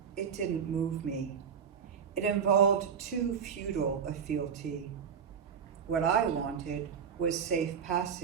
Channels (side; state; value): left; quieter; 7.1 dB